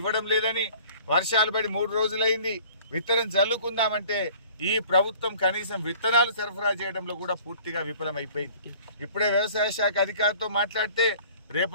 ఇవ్వడం లేదని, వర్షాలు పడి 3 రోజులైంది, విత్తనం జల్లుకుందామంటే ఈ ప్రభుత్వం కనీసం విత్తనాలు సరఫరా చేయడంలో కూడా పూర్తిగా విఫలమైపోయింది. ఇప్పుడే వ్యవసాయ శాఖ అధికారితో మాట్లాడితే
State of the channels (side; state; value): both; inverted; correlation -0.50